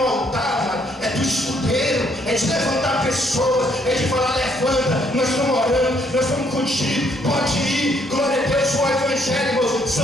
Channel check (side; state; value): both; normal; correlation 0.69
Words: altar, é do escudeiro, é de levantar pessoas, é de falar, levanta, nós estamos orando, nós estamos contigo, pode ir, glória a Deus. O evangelho, irmãos,